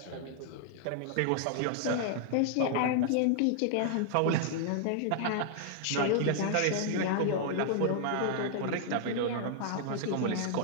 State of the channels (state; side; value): different; both; correlation -0.01